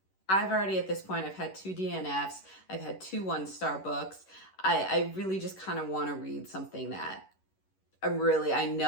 I've already, at this point, I've had 2 DNFs. I've had 2 1-star books. I really just kind of want to read something that I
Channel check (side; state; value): right; late; 11 ms